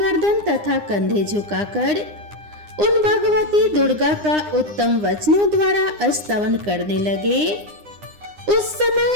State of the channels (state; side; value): late; left; 9.8 ms